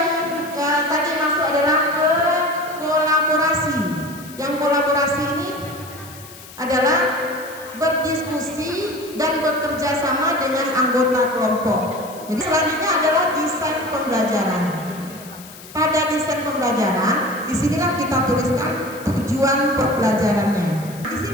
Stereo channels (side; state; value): left; noise; hiss, 18 dB below the sound